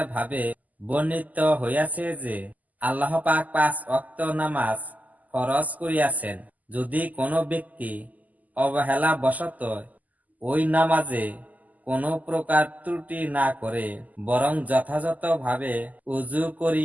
ভাবে বর্ণিত হইয়াছে যে আল্লাহ পাক 5 ওয়াক্ত নামাজ ফরজ করিয়াছেন। যদি কোনো ব্যক্তি অবহেলা বশত ওই নামাজে কোনো প্রকার ত্রুটি না করে, বরং যথাযথভাবে উযু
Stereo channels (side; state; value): left; late; 0.079 ms